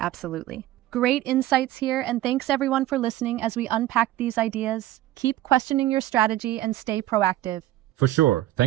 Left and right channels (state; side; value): quieter; left; 14.8 dB